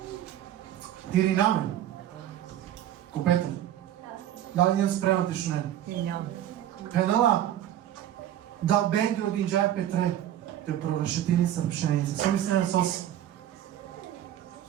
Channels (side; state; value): left; quieter; 11.7 dB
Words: Тири намен. Ко Петар. Дали ням спремате шо не? пенала да бенги од инџај Петре, те прорешетини са пшеница. Со мислен сосе.